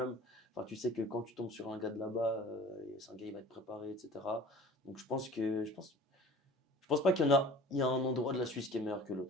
Enfin, tu sais que quand tu tombes sur un gars de là-bas, c'est un gars, il va être préparé, etc. Donc je pense pas il y a un endroit de la Suisse qui est meilleur que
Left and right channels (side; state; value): both; normal; correlation 0.44